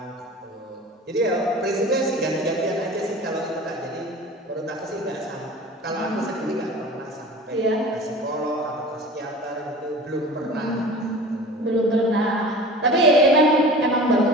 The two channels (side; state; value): both; normal; correlation 0.38